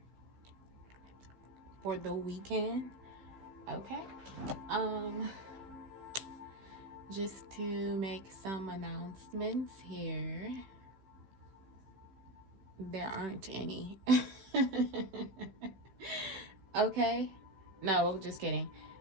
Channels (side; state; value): left; late; 16 ms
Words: for the weekend. Okay. Um, just to make some announcements here. There aren't any. Okay. No, just kidding.